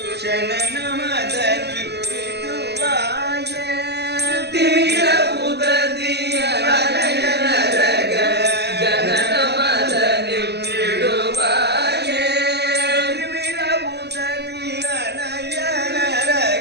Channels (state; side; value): late; left; 0.48 ms